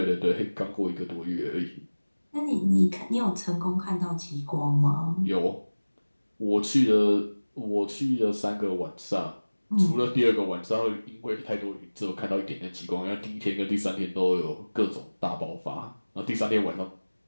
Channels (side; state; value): both; inverted; correlation -1.00